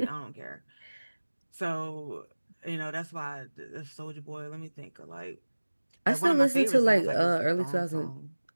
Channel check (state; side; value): inverted; both; correlation -1.00